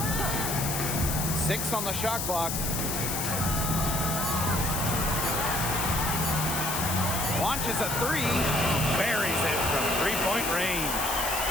6 on the shot clock. Launches a 3. Buries it from 3-point range.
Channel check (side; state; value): left; noise; hiss, 2 dB below the sound